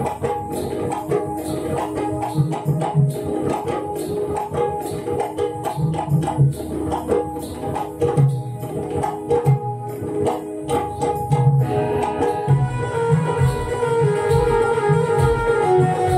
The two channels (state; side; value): identical; both; correlation 1.00